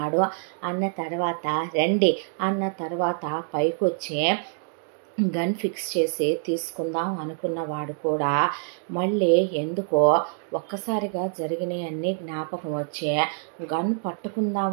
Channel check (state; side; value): silent; left; 61 dB below the other